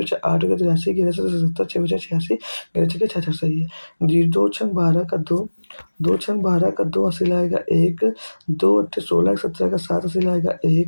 8 हो गया 83, 11 से 77, 6 बचा 86, 11 छक्के 66 सही है जी। 2 छंग 12 का 2, 2 छंग 12 का 2 अस्सी लाएगा 1, 2 अट्ठे 16 17 का 7 अस्सी लाएगा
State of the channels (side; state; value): both; inverted; correlation -1.00